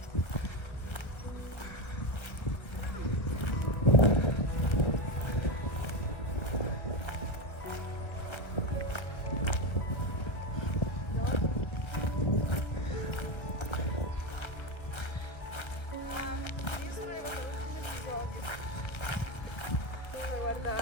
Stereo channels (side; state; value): right; late; 1.3 ms